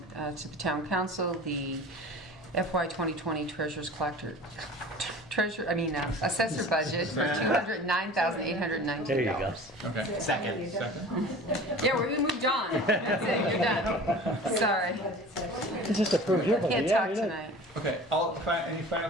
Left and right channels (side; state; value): both; normal; correlation 0.40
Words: to the town council the FY 2020 assessor budget for $209,819. There you go. Okay. Second. Yeah, we moved on. That's it, you're done. Sorry, It's just a first year, but can't yeah, talk you're not- tonight. Okay, any final